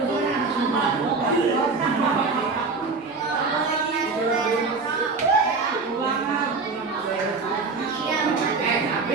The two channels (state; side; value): quieter; left; 4.2 dB